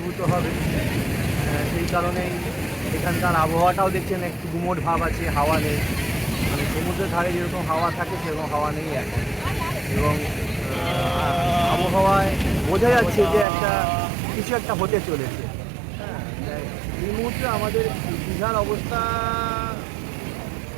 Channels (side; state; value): left; drops out; at 13.5 s